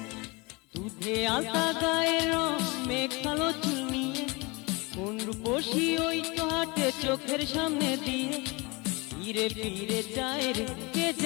দুধে আলতা গায়ের রঙে কালো চুল নিয়ে, কোন রূপসী ওই তো হাটে চোখের সামনে দিয়ে, ফিরে ফিরে যায় রে কে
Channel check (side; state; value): right; quieter; 26.6 dB